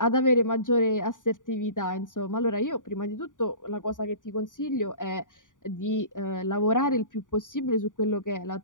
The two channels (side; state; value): right; late; 0.88 ms